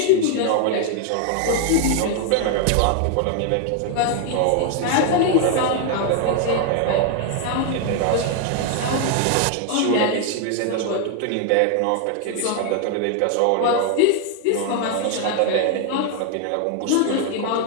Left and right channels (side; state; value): both; different; correlation 0.00